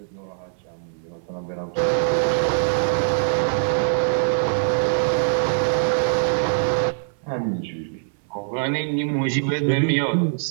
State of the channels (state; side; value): silent; left; 58 dB below the other